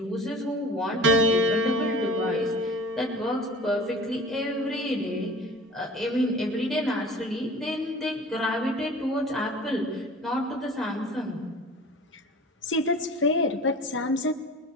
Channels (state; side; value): normal; both; correlation 0.42